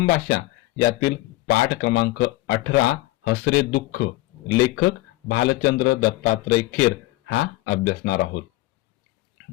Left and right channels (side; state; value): right; quieter; 18.6 dB